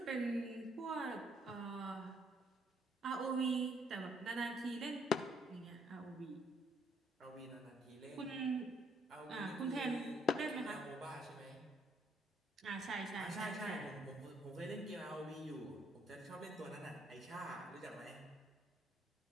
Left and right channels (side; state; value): both; normal; correlation 0.68